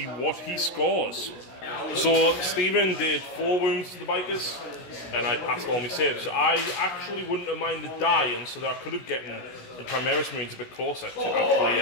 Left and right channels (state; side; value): late; right; 16 ms